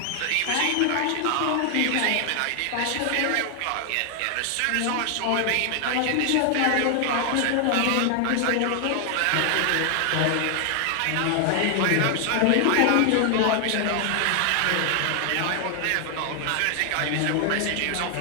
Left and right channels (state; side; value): different; both; correlation 0.00